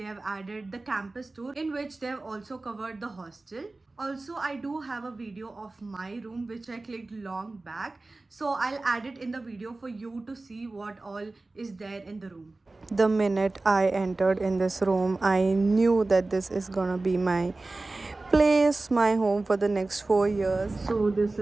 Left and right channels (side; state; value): left; quieter; 3.2 dB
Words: have added the campus tour in which they have also covered the hostel. Also, I do have a video of my room which I clicked long back. So I'll add it in the video for you to see what all is there in the room. The minute I entered in this room, I knew that this is gonna be my place, my home for the next 4 years. So this